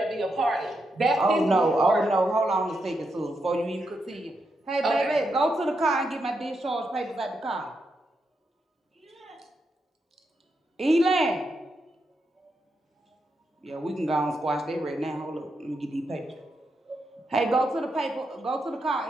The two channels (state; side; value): normal; both; correlation 0.83